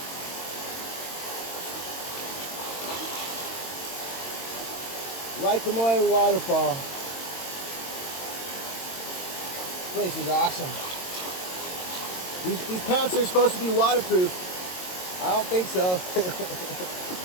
Waikamoe Waterfall. This place is awesome. These pants are supposed to be waterproof. I don't think so.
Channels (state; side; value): late; right; 22 ms